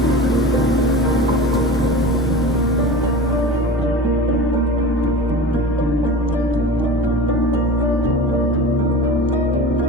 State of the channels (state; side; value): normal; both; correlation 0.33